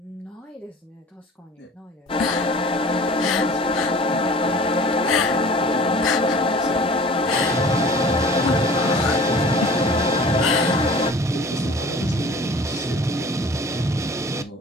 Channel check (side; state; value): both; normal; correlation 0.45